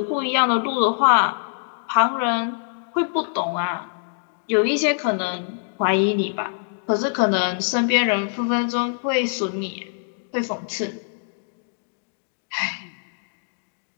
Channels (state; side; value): silent; right; digital silence